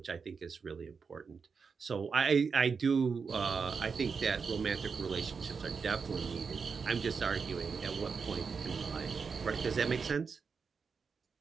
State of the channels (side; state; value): left; quieter; 5.4 dB